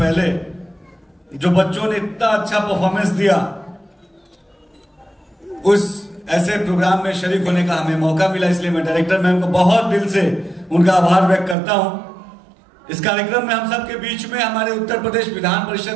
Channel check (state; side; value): drops out; left; at 11.6 s